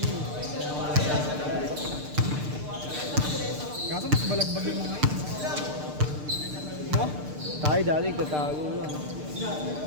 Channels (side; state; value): left; late; 6.7 ms